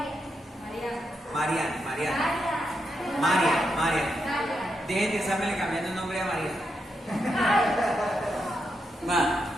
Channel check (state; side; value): normal; both; correlation 0.83